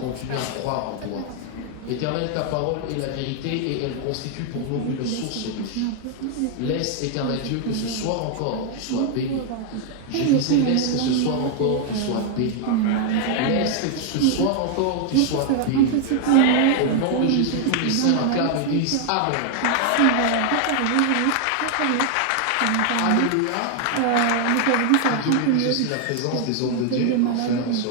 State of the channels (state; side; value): different; both; correlation 0.00